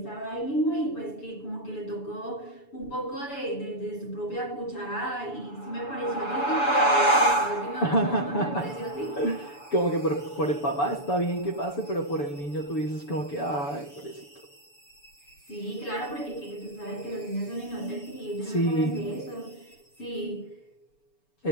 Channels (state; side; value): late; right; 7.0 ms